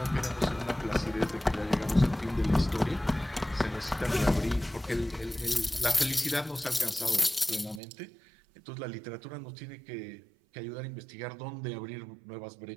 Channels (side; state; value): left; drops out; at 7.8 s